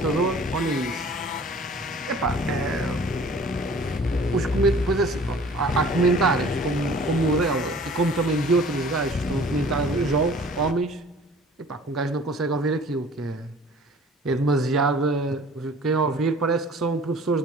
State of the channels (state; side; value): normal; both; correlation 0.48